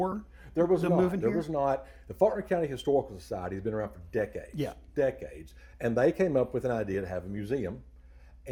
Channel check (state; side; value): identical; both; correlation 1.00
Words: There was not. There was not. The Faulkner County Historical Society has been around for decades. Yeah. Decades. And they came up with an idea to have a museum.